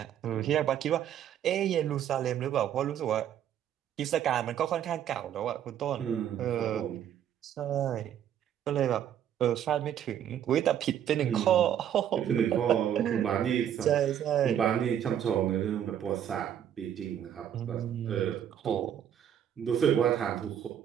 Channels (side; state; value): left; quieter; 9.8 dB